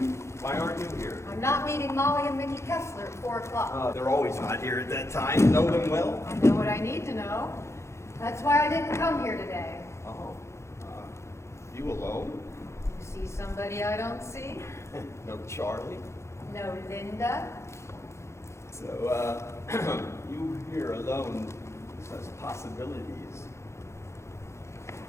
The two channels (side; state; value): right; late; 0.13 ms